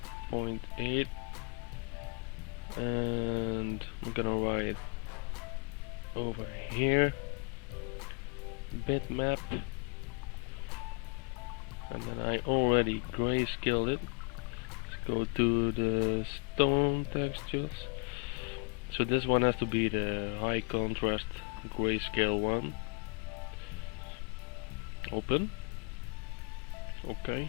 0.8, and I'm gonna write over here bitmap, and then I already grayscaled it. Let's go to the stone textures. So this one has to be the high contrast grayscale one. Open. Okay.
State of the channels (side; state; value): right; quieter; 35.6 dB